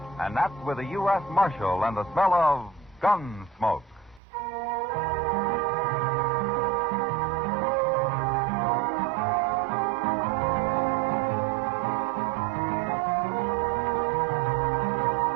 and that's with a U.S. Marshal and the smell of Gunsmoke.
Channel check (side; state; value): left; drops out; at 4.2 s